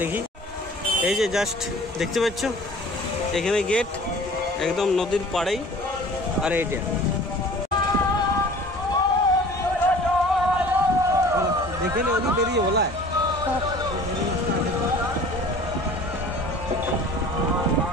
এই যে জাস্ট দেখতে পাচ্ছ এখানে গেট একদম নদীর পাড়েই, আর এইটা দেখে নি ওদিক বেরিয়ে বলা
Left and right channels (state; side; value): normal; both; correlation 0.46